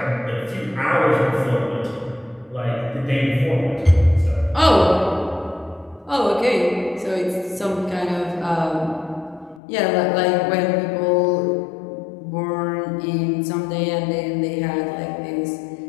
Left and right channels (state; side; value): drops out; right; at 9.6 s